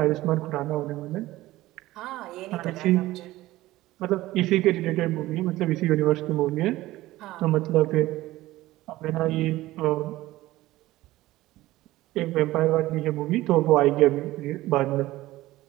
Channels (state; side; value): quieter; left; 17.1 dB